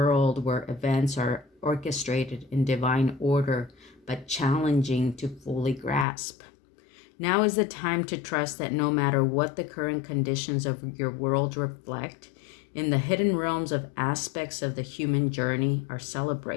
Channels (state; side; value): drops out; right; at 6.1 s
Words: where events are orchestrated in divine order, but challenging to fully grasp. Now is the time to trust that no matter what the current conditions of your world reflect, in the hidden realms of aspects of the human journey are